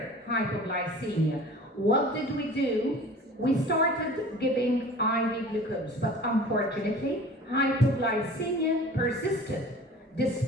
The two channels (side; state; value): both; normal; correlation 0.43